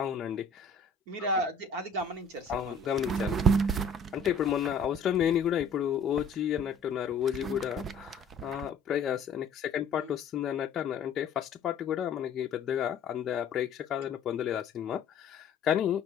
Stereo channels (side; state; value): right; quieter; 4.2 dB